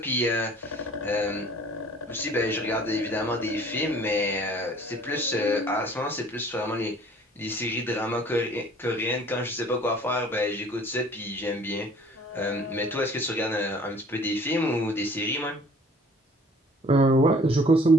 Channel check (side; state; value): both; normal; correlation 0.52